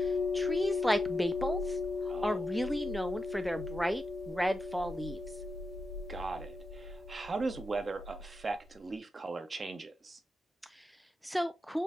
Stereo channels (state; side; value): normal; both; correlation 0.87